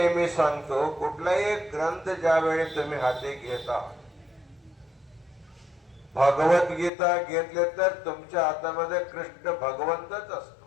सांगतो, कुठलाही ग्रंथ ज्यावेळी तुम्ही हाती घेता, भगवद्गीता घेतले तर तुमच्या हातामध्ये कृष्ण भगवंतच असतो.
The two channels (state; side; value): drops out; right; at 6.9 s